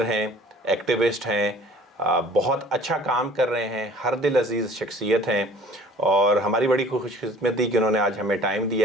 हैं, एक्टिविस्ट हैं, बहुत अच्छा काम कर रहे हैं, हर दिल अजीज़ शख्सियत हैं और हमारी बड़ी खुशकिस्मती कि उन्होंने आज हमें टाइम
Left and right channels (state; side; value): normal; both; correlation 0.50